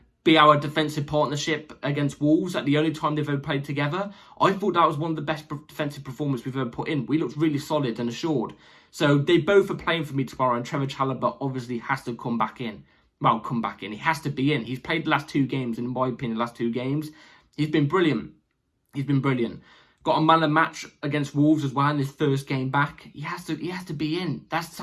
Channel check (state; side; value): identical; both; correlation 1.00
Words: be our defensive partnership against Wolves at the only time they've ever played together, I thought that was one of the best defensive performances we've ever put in. We looked really solid and assured. So they both are playing for me tomorrow, and Trevor Chalobah obviously has to come back in. Well, come back in. He has to be in. He's played the last 2 games, and in my opinion, the last 2 games, he's been brilliant. He's been brilliant. Got a man of match against Wolves as well in his first game back. He has to be in. That's